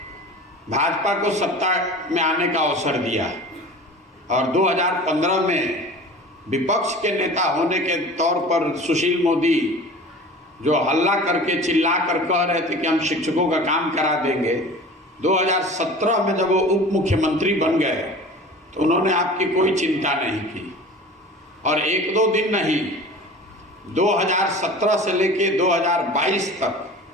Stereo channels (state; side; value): normal; both; correlation 0.39